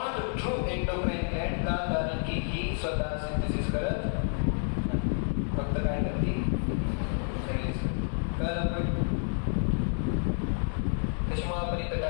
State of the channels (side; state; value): right; silent; 58 dB below the other